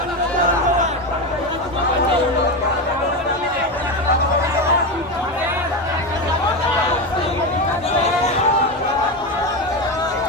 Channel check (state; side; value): normal; both; correlation 0.16